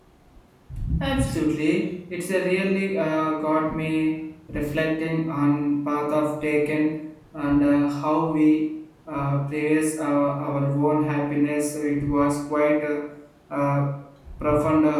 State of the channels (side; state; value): both; identical; correlation 1.00